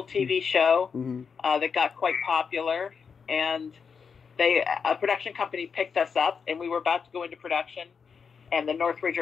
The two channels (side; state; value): right; quieter; 6.0 dB